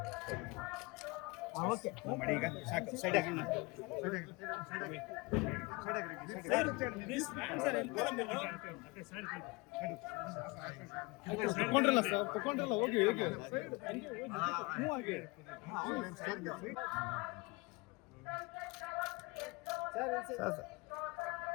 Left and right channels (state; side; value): quieter; right; 25.9 dB